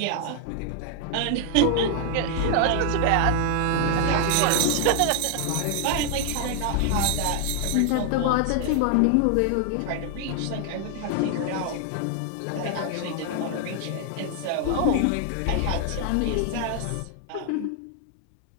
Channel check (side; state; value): both; different; correlation 0.00